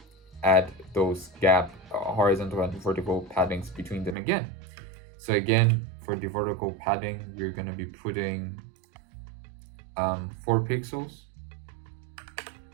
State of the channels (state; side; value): drops out; left; at 4.2 s